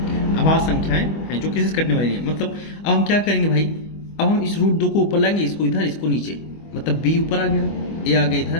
जो किसी से कटने वाली नहीं है। मतलब अब हम क्या करेंगे भाई, अब हम इस √2 को ऊपर लाएंगे, इसको इधर, इसको नीचे, मतलब b ऊपर आ गया, a आ गया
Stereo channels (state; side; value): late; right; 25 ms